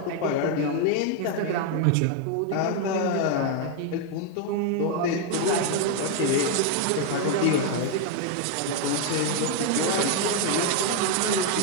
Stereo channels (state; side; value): different; both; correlation 0.01